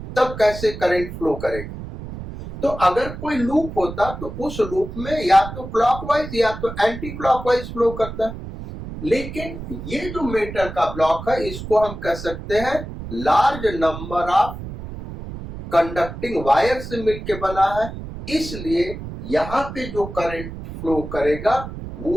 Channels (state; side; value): noise; right; rumble, 10 dB below the sound